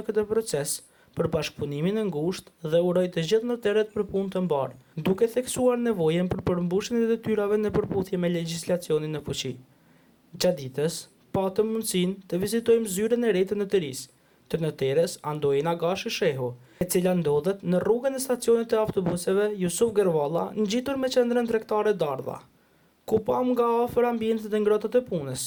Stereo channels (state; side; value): identical; both; correlation 1.00